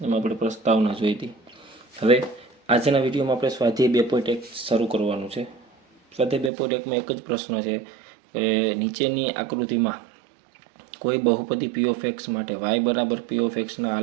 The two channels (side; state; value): left; drops out; at 6.5 s